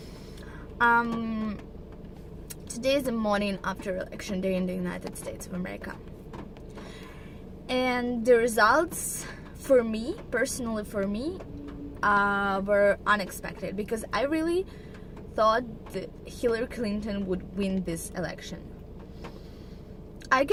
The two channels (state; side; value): identical; both; correlation 1.00